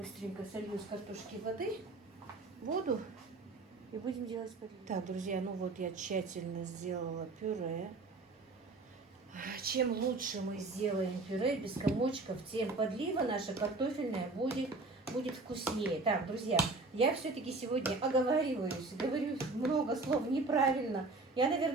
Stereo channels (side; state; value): left; quieter; 3.4 dB